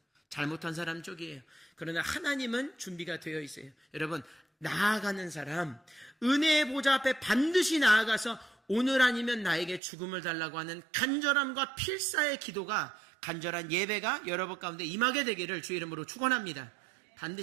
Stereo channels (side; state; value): left; drops out; at 9.8 s